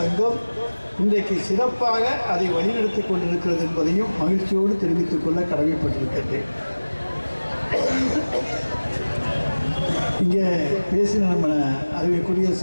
சங்கம் இன்றைக்கு சிறப்பாக அதை வழிநடத்தி கொண்டிருக்கிறது என்பதையும் மகிழ்ச்சியோடு தெரிவித்துக் கொள்ள கடமைப்பட்டிருக்கின்றேன். இங்கே பேசின நம்ம அறிவிக்குரிய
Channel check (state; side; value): inverted; both; correlation -1.00